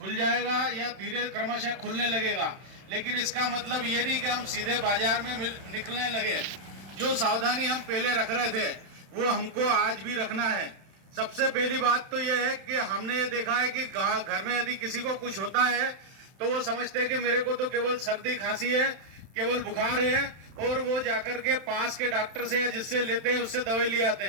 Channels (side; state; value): left; late; 31 ms